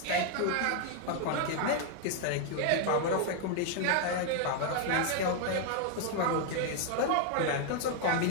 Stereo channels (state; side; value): different; both; correlation 0.00